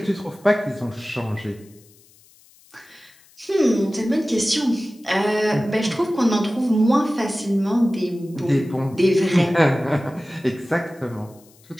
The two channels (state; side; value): noise; left; hiss, 28 dB below the sound